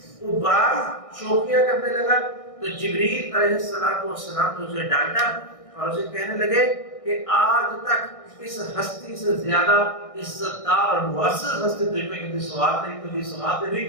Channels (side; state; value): right; late; 1.6 ms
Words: وہ براق شوخیاں کرنے لگا تو جبریل علیہ السلام نے اسے ڈانٹا اور اسے کہنے لگے کہ آج تک اس ہستی سے زیادہ عزت دار اور مؤثر ہستی تجھ پہ کبھی سوار نہیں ہوئی،